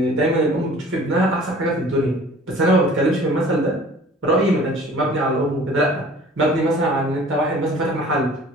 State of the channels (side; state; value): both; normal; correlation 0.48